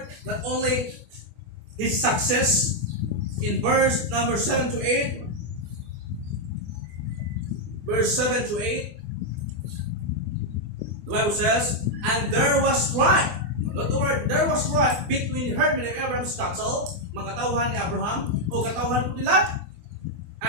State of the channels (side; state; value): left; late; 24 ms